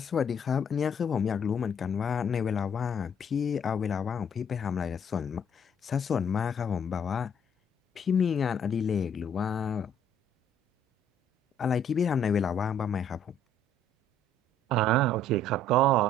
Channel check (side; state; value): both; normal; correlation 0.62